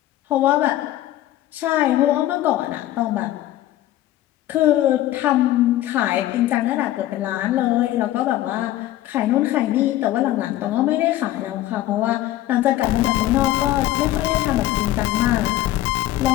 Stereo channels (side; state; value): right; quieter; 14.5 dB